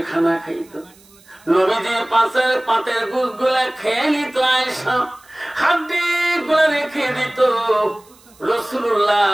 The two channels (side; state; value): right; noise; hiss, 28 dB below the sound